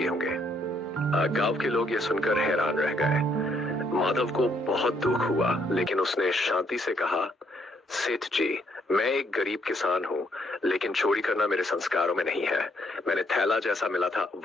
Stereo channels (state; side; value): normal; both; correlation 0.71